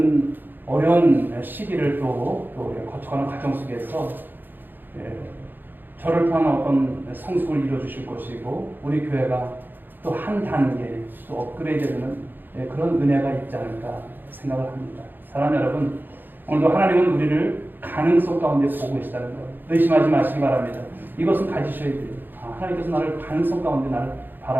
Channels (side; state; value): left; late; 0.092 ms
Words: 어려운 시기를 또 거쳐가는 과정 속에서 저를 통한 어떤 성숙을 이루어주실 것이고 우리 교회가 또 한 단계 또 업그레이드되는 그런 은혜가 있지 않을까 생각을 합니다. 사랑하는 여러분, 오늘도 하나님은 우리를 가능성 가운데 보고 계시다는 것 의심하지 마시기 바랍니다. 이것은 가지셔야 돼요. 하나님께서 나를 가능성 가운데 나를